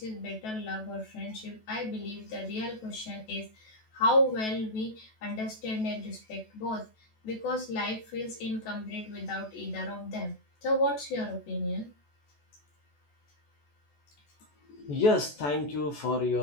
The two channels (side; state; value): right; late; 14 ms